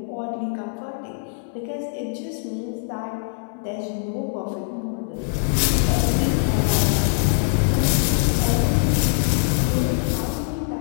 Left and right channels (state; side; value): silent; right; digital silence